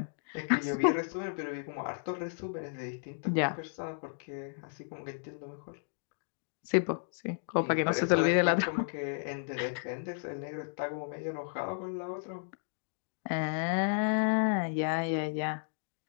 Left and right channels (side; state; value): right; silent; digital silence